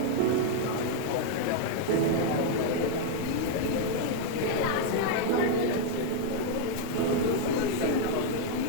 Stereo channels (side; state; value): both; different; correlation 0.00